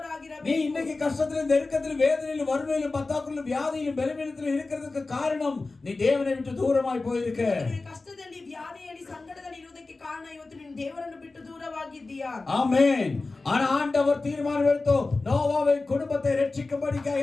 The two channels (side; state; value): right; quieter; 3.5 dB